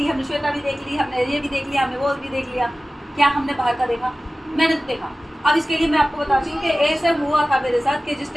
हमने श्वेता भी देख ली, हमने ये भी देख लिया, हमने वो भी देख लिया, क्या हमने बाहर का देखा? मैंने तो देखा। अब इसके लिए मैं आपको बताती हूँ कि ऐसे हुआ था मेरे साथ कि जिस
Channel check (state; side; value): normal; both; correlation 0.96